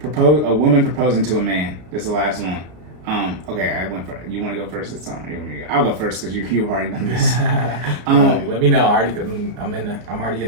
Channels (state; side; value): late; left; 33 ms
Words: A woman proposing to a man. This is the last one. Okay, I went for. You want to go first this time? You want me to go? I'll go first because you've already done this. Let me know. I'm already in